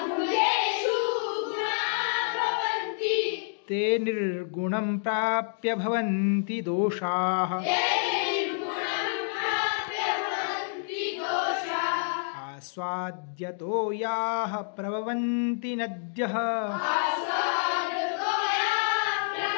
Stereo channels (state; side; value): silent; right; digital silence